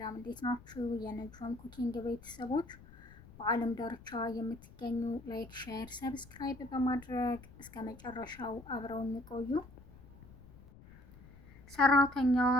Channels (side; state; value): left; noise; rumble, 20 dB below the sound